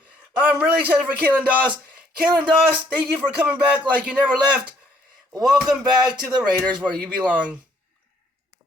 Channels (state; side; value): normal; both; correlation 0.66